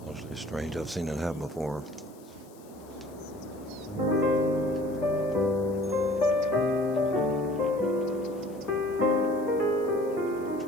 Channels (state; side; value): noise; left; hiss, 26 dB below the sound